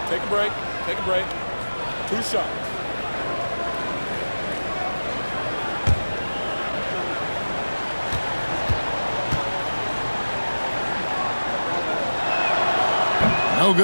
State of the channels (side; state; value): both; inverted; correlation -1.00